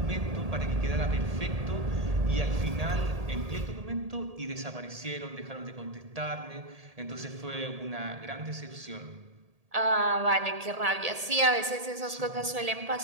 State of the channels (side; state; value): left; late; 1.8 ms